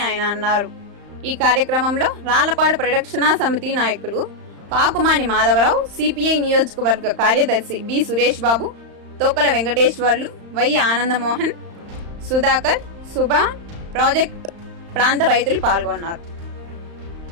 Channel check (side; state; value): left; late; 35 ms